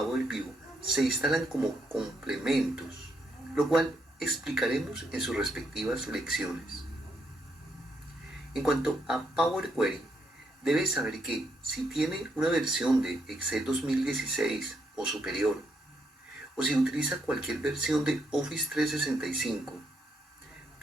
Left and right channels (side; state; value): both; normal; correlation 0.76